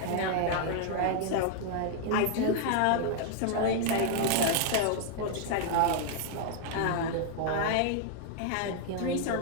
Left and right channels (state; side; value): different; both; correlation 0.00